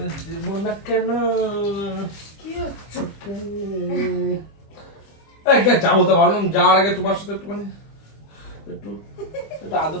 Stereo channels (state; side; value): late; right; 25 ms